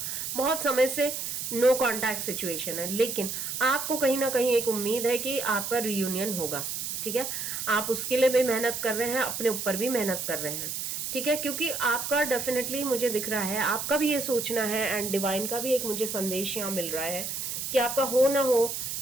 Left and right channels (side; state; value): right; noise; hiss, 4 dB below the sound